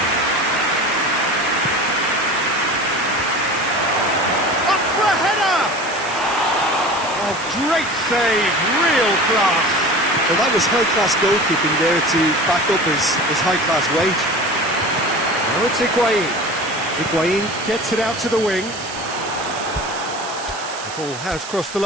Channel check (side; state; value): right; noise; hiss, 12 dB below the sound